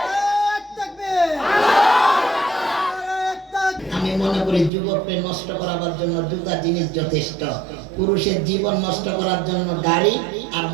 আমি মনে করি যুবককে নষ্ট করার জন্য দুটা জিনিস যথেষ্ট। পুরুষের জীবন নষ্ট করার জন্য গাড়ি, আর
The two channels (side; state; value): left; drops out; at 4.7 s